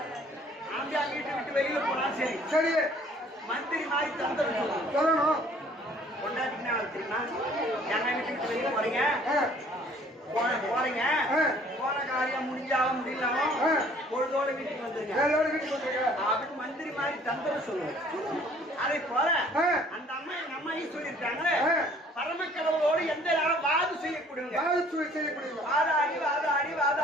ஆம்பியா வீட்டு விட்டு வெளியில போனா சரி சரி மந்திரி மாதிரி தந்துடும் சொல்லணும். கொண்டாட்டிங்கன்னா தெரியுமா? எங்க வீட்டு விட்டு வெளியில போறீங்க போறீங்க போன காரியம் முடிஞ்சாலும் முடியலாம் பொழுதோட வீட்டுக்கு வந்துருங்க அப்படின்னு மந்திரி மாதிரி தந்திரம் சொல்லுவோம். அதை போல அந்த அம்மா எங்க அம்மாயும் சொல்லியிருக்காங்க பரமக்கடவுளோடு எந்த நேரம் வாது செய்யக்கூடியவங்க. வாதாடி வாதாடி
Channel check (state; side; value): normal; both; correlation 0.56